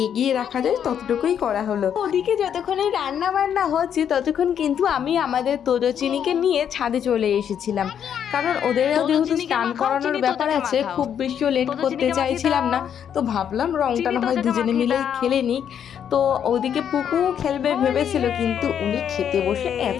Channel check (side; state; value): right; quieter; 8.7 dB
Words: এগিয়ে রাখা যায় ততটুকুই করা হলো। ওদিকে যতক্ষণে রান্না বান্না হচ্ছে ততক্ষণ কিন্তু আমি আমাদের তোজচিনিকে নিয়ে ছাদে চলে এসেছিলাম, কারণ ওদের যেহেতু স্নান করানোর ব্যাপার আছে, খুব বেশিও লেট করতে চাইছিলাম না। তো ভাবলাম রংটা না হয় দুজনে মিলেই খেলে নিক। তো ওদিকে পুকু খেলবে ভেবেছিল, কিন্তু উনি খেতে বসে